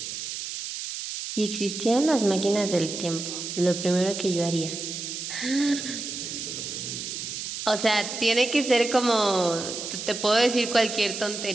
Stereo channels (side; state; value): right; noise; hiss, 6 dB below the sound